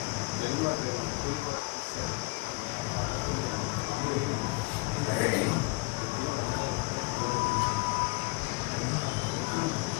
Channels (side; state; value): right; quieter; 26.1 dB